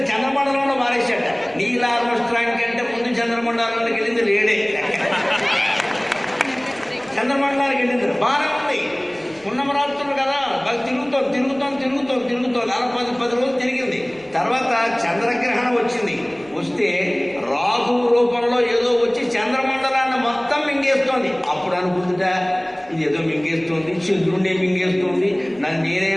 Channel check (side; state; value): right; noise; rumble, 28 dB below the sound